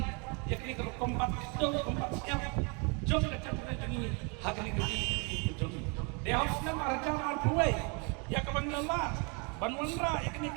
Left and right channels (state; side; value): quieter; left; 33.5 dB